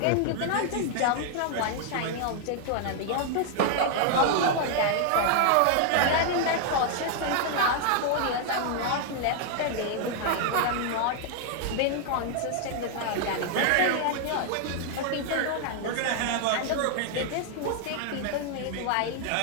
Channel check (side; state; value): both; different; correlation 0.00